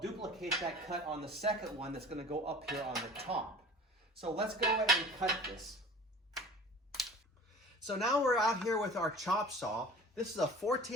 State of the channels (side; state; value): both; normal; correlation 0.42